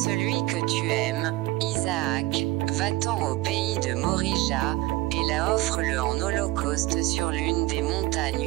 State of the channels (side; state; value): left; quieter; 18.7 dB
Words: que tu aimes, Isaac, va-t'en au pays de Morija, et là offre-le en holocauste sur l'une des